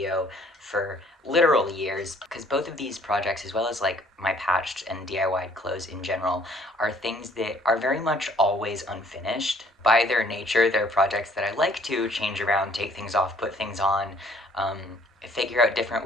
for literal years because both of these projects, as well as like my patched and DIY clothes in general, are things that are very much always unfinished. By their nature, they're projects that I like to change around, take things off, put things on, um, figure out different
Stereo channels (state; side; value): normal; both; correlation 0.59